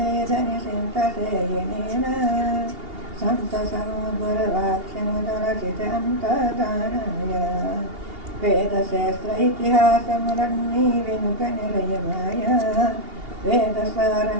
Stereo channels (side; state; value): left; late; 2.8 ms